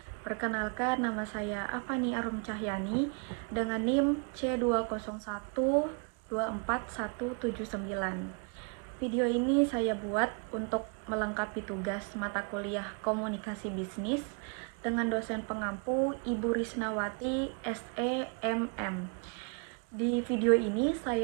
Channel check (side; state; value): left; quieter; 37.7 dB